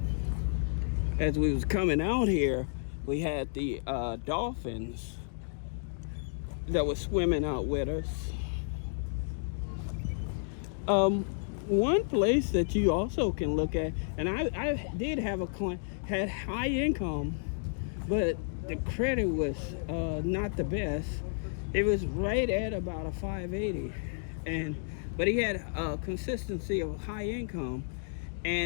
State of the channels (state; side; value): silent; right; digital silence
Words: As we was coming out here, we had the dolphins that was swimming out with us. One place that you also can look at, and I did have a client, had high income, but the credit was not the best. It was right at about a 580, but he had a consistency of high income.